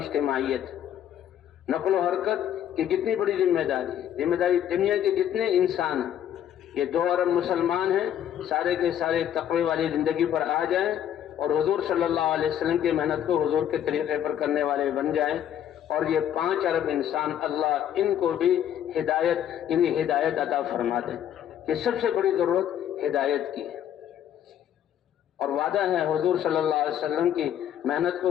نقل و حرکت کی کتنی بڑی ذمہ داری ہے، ذمہ داری دنیا کے جتنے انسان ہیں یہ 2 ارب مسلمان ہیں، سارے کے سارے تقوی والی زندگی پر آ جائیں اور حضور صلی اللہ علیہ وسلم کی محنت کو حضور کے طریقے پر کرنے والے بن جائیں، اور یہ 5 ارب انسان اللہ ان کو بھی ہدایت عطا فرما دے، کہ سب سے بڑی ضرورت ہدایت کی ہے۔ اور وعدہ ہے حضور صلی اللہ علیہ وسلم کی محنت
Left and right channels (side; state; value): right; quieter; 10.3 dB